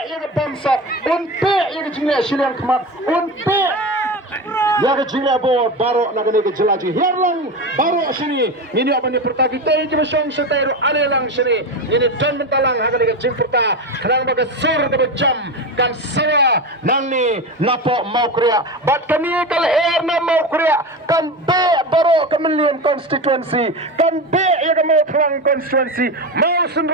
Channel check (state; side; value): normal; both; correlation 0.22